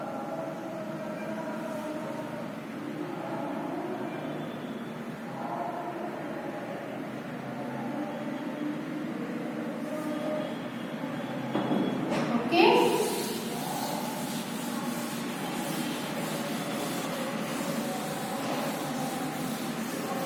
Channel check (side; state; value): both; identical; correlation 1.00